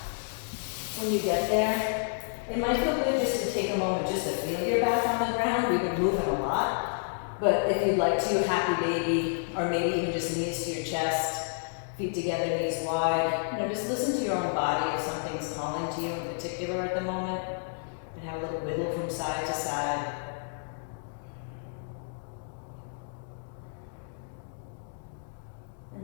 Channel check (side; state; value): right; silent; digital silence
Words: When you get there, it might feel good just to take a moment just to feel your back on the ground. We've been moving a lot. But if you'd like to, happy baby, or maybe even just knees to your chest, feet together, knees wide. Just listen to your own body if something's calling to you in particular at the moment. And have a little wiggle from side to side.